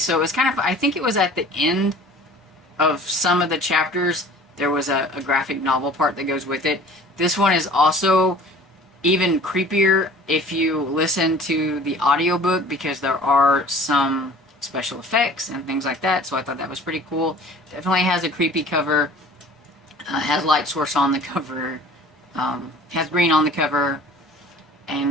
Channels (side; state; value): both; normal; correlation 0.46